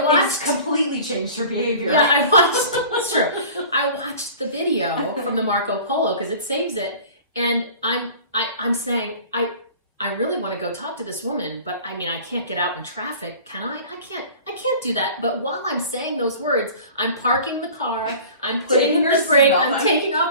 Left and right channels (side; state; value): both; inverted; correlation -0.43